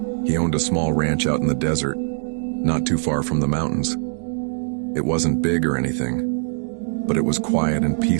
He owned a small ranch out in the desert, not too far from the mountains. It wasn't big or anything, but it was quiet and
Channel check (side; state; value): left; silent; digital silence